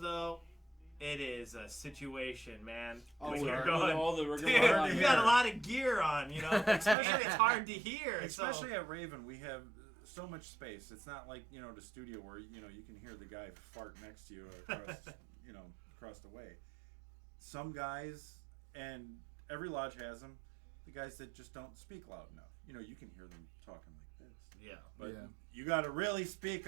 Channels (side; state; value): left; drops out; at 7.0 s